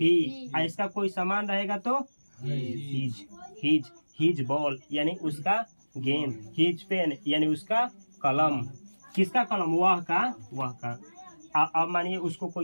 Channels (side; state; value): both; inverted; correlation -1.00